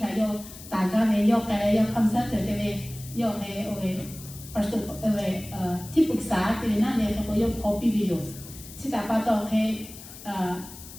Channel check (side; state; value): left; noise; hiss, 16 dB below the sound